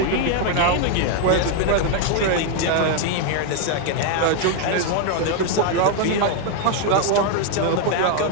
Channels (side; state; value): both; different; correlation 0.00